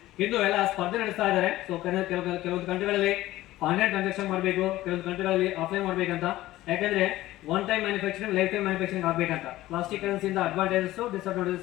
ಇಂದು ಎಲ್ಲ ಸ್ಪರ್ಧೆ ನಡೆಸ್ತಾ ಇದ್ದಾರೆ. ಸೊ ಕೆಲವೊಂದು ಕಂಟ್ರಿಗಳಲ್ಲಿ ಆನ್ಲೈನ್ ಟ್ರಾನ್ಸಾಕ್ಷನ್ ಮಾಡಬೇಕು, ಕೆಲವೊಂದು ಕಂಟ್ರಿಗಳಲ್ಲಿ ಆಫ್ಲೈನ್ ಮಾಡಬೇಕಂತ. ಯಾಕಂದ್ರೆ one time manufacturing, life time manufacturing ಆಗಬೇಕಂತ. ಪ್ಲಾಸ್ಟಿಕ್ ಕರೆನ್ಸಿಯಿಂದ ಅಡ್ವಾಂಟೇಜಸ್,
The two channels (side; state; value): right; quieter; 16.1 dB